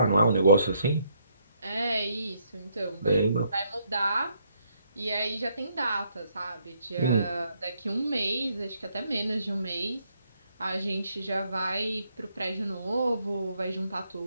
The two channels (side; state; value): both; inverted; correlation -0.73